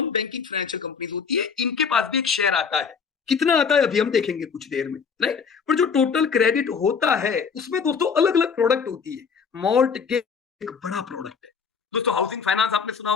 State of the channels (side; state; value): right; quieter; 6.0 dB